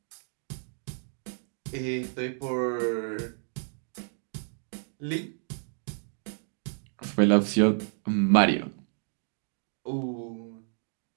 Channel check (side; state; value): left; silent; digital silence